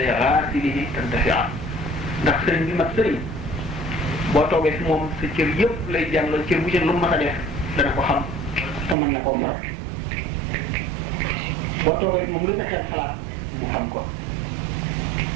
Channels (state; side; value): drops out; left; at 9.0 s